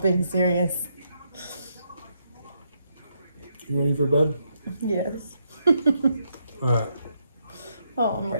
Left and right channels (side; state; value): both; inverted; correlation -0.78